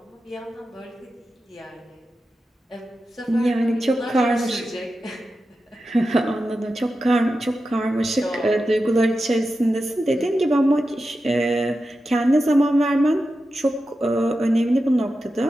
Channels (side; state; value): both; normal; correlation 0.91